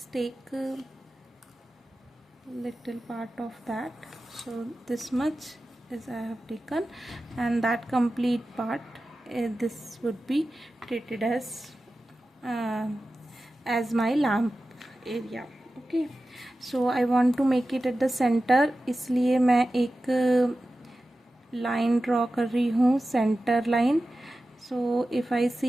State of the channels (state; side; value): normal; both; correlation 0.94